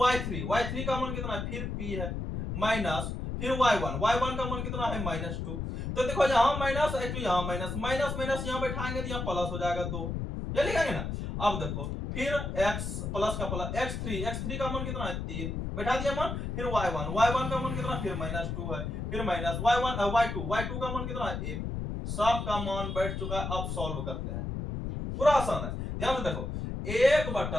y3 का मान कितना है, फिर p है, माइनस, फिर y1 का मान कितना है -2। तो देखो यहां माइनस, यहां माइनस, माइनस यहां बैठाएंगे तो यहां प्लस हो जाएगा 2, ये लिखेंगे ना। अब देखो फिर x प्लस का प्लस, x3 का मान कितना है 3 बैठा दिया मान, फिर y1 का मान कितना, फिर -2 है, फिर माइनस y2 का मान कितना है 1। सब का मान बैठ चुका है। अब सॉल्व करते हैं, पूरा आसान है, ध्यान से देखो।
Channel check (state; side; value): noise; left; rumble, 4 dB below the sound